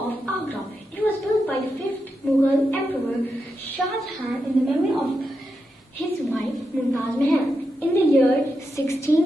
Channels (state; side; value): normal; both; correlation 0.86